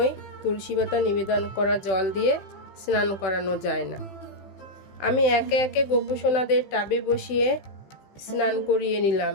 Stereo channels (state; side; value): late; right; 16 ms